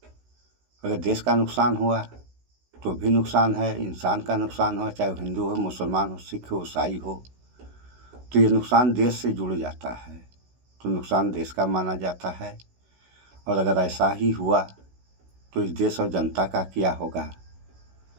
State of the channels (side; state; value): left; late; 16 ms